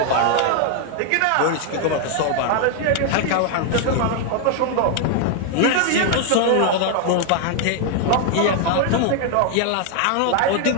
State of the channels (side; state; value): both; different; correlation 0.00